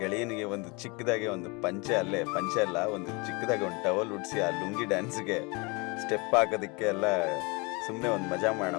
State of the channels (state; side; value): quieter; right; 28.2 dB